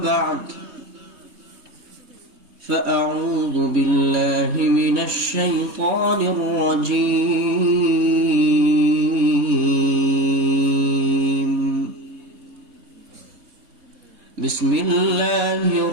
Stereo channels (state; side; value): late; left; 4.2 ms